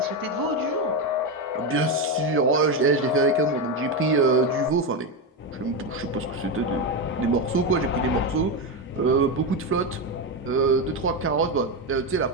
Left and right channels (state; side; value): normal; both; correlation 0.12